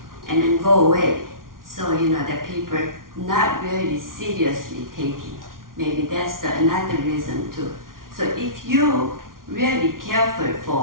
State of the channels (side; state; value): left; late; 0.91 ms